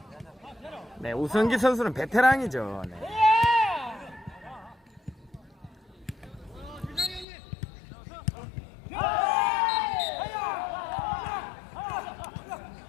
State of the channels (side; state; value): right; drops out; at 7.2 s